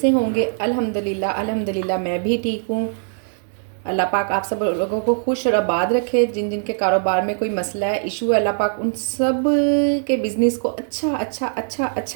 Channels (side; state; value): left; silent; digital silence